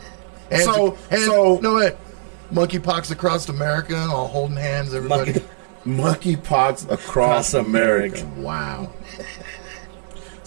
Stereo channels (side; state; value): left; silent; 60 dB below the other